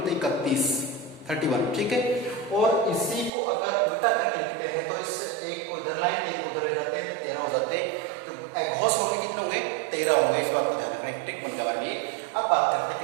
है, 31। ठीक है, और इसी को अगर उल्टा करके लिखते हैं तो इस एक को इधर लाइन, 3 को उधर ले जाते हैं तो 13 हो जाते हैं। तो अघोष होंगे कितने होंगे, 13 होंगे। इस बात को ध्यान रखना, एक ट्रिक बन गया हमारे लिए। अब बात करते हैं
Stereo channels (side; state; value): left; drops out; at 3.3 s